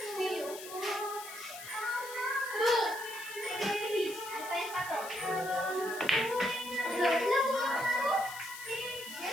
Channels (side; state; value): left; noise; hiss, 12 dB below the sound